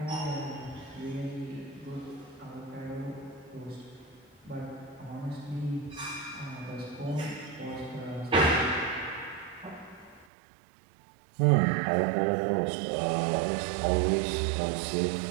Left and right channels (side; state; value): left; drops out; at 10.2 s